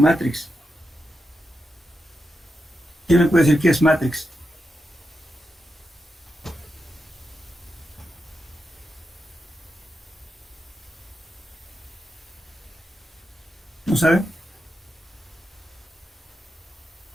¿Quién me puede decir qué es matrix? ¿No sabe?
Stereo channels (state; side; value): normal; both; correlation 0.88